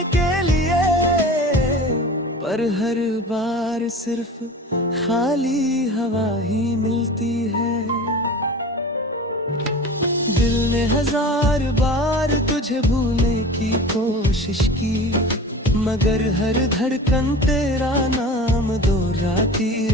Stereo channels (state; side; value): normal; both; correlation 0.36